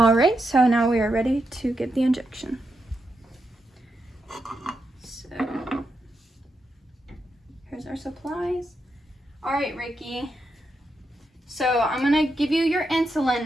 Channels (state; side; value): normal; both; correlation 0.84